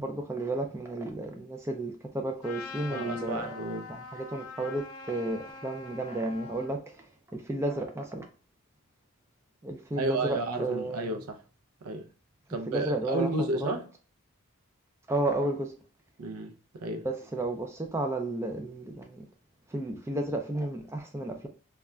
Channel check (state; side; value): normal; both; correlation 0.46